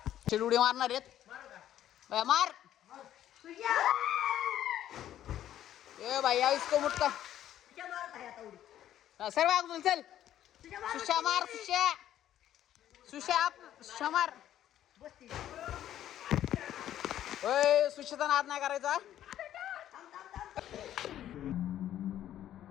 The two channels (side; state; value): right; quieter; 11.8 dB